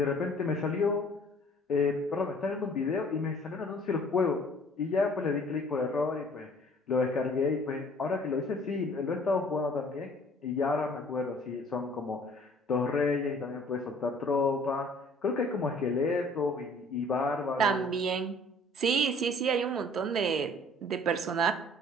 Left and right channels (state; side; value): normal; both; correlation 0.53